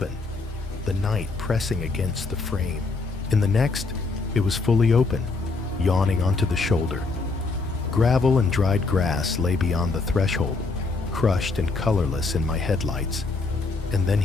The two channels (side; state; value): right; quieter; 3.9 dB